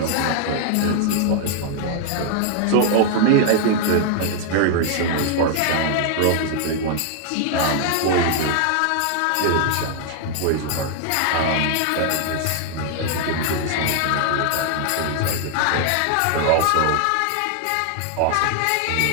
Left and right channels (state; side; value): different; both; correlation 0.00